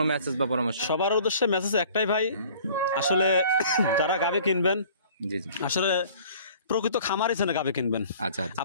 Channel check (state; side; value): inverted; both; correlation -0.50